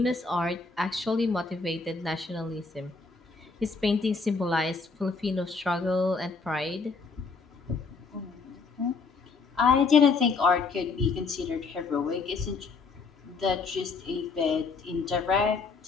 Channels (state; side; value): quieter; right; 4.5 dB